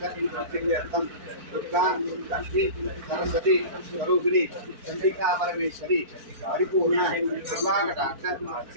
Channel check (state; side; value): late; left; 4.5 ms